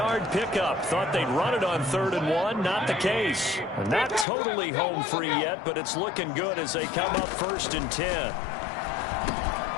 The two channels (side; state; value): right; drops out; at 4.2 s